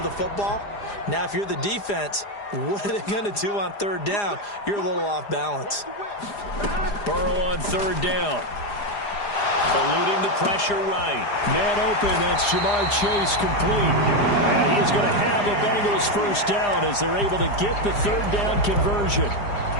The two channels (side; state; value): right; late; 4.9 ms